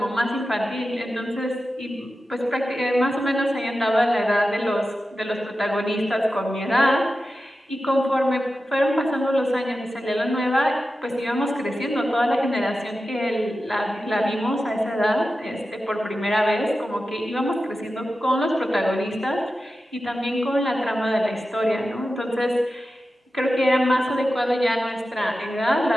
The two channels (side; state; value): both; normal; correlation 0.92